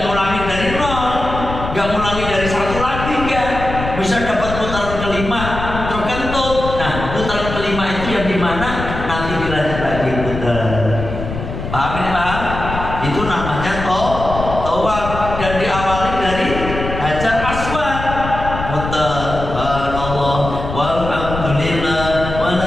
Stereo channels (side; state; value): left; noise; rumble, 7 dB below the sound